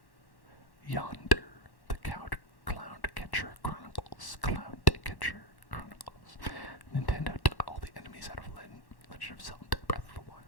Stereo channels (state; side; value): late; right; 1.1 ms